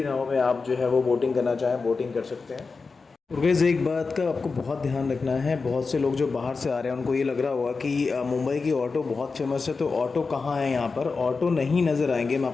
नाव में आप जो है वो बोटिंग करना चाहें बोटिंग कर सकते हैं। और गाइस एक बात का आपको बहुत ध्यान रखना है, बहुत से लोग जो बाहर से आ रहे हैं उनको ये लग रहा होगा कि मुंबई की ऑटो बहुत फेमस है, तो ऑटो कहाँ है। यहाँ पर ऑटो नहीं नज़र आएंगे। मैं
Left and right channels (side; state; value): right; quieter; 4.4 dB